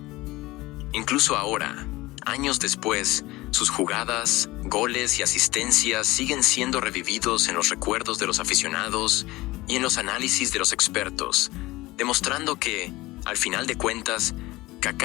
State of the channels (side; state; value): right; quieter; 19.6 dB